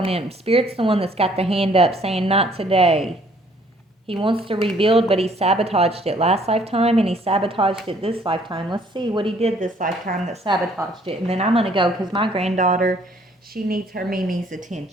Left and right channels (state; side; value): normal; both; correlation 0.62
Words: him, Spirit's the one that's got the hand up saying not today. He wants to rebuild, but he sabotaged it last lifetime, and he sabotaged it this lifetime. Let's see what he did this lifetime that sabotaged it. And then I'm going to go, because my granddaughter, she needs her Mimi's